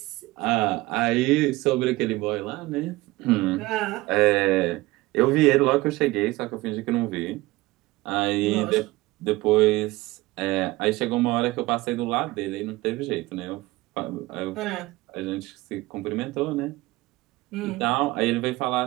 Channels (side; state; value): left; quieter; 19.9 dB